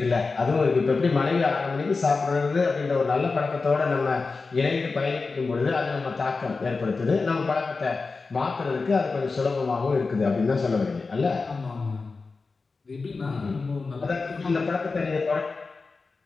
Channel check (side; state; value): right; quieter; 4.2 dB